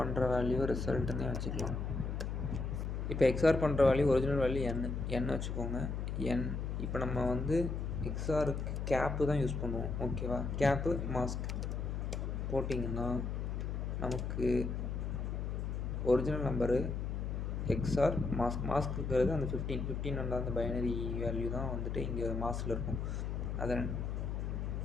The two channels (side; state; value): left; noise; hum, 2 dB below the sound